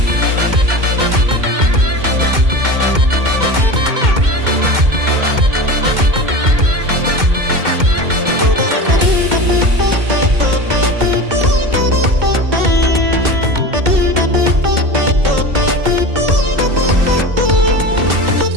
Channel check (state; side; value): late; left; 2.1 ms